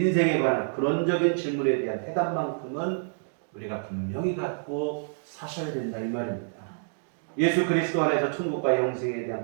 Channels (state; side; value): silent; left; digital silence